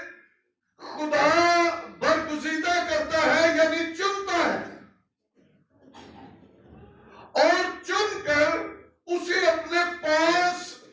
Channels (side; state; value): both; identical; correlation 1.00